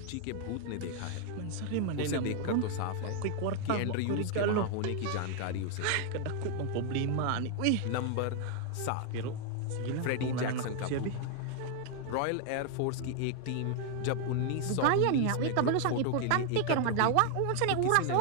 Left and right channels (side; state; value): both; different; correlation 0.00